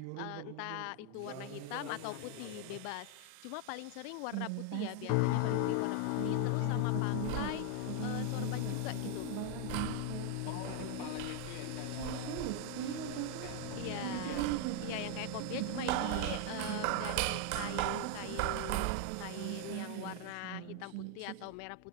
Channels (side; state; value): both; different; correlation 0.00